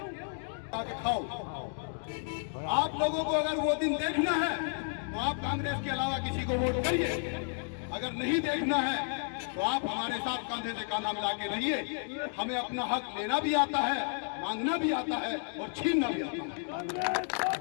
आके खाओ। आप लोगों को अगर वो दिन देखना है तो आप कांग्रेस के अलावा किसी को वोट करिए। अगर नहीं देखना है तो आप हमारे साथ कंधे से कंधा मिला के रहिए। हमें अपना हक लेना भी आता है, मांगना भी आता है और छीनना भी आता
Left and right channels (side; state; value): right; silent; 56 dB below the other